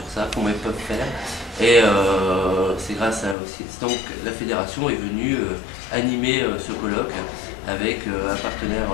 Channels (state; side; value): drops out; right; at 3.4 s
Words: ça, comment ils peuvent faire. Et c'est grâce à aussi. Donc la fédération est venue animer ce colloque avec un